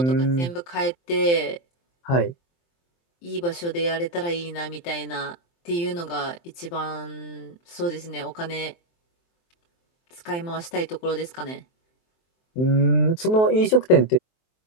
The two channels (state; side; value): late; right; 23 ms